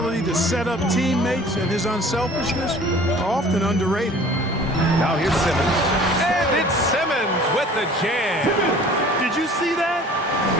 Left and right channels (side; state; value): both; normal; correlation 0.48